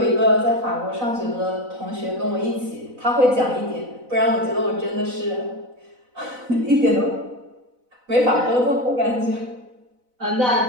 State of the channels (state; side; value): late; left; 4.0 ms